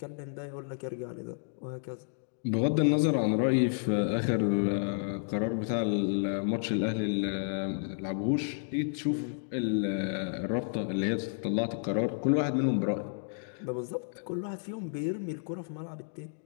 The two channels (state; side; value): silent; right; digital silence